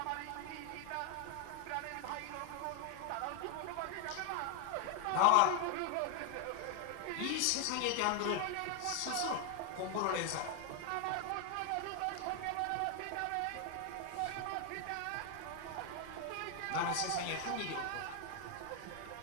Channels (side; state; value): both; different; correlation 0.00